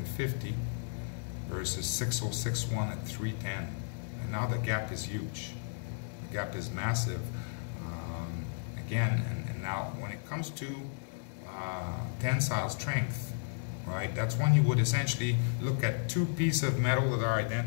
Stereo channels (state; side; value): silent; right; 55 dB below the other